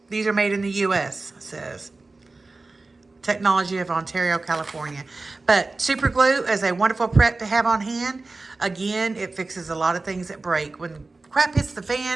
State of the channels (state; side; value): quieter; left; 3.5 dB